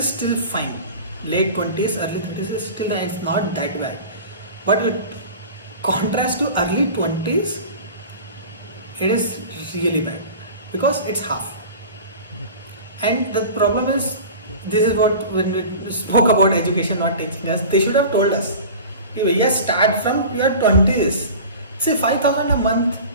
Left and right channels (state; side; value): inverted; both; correlation -0.36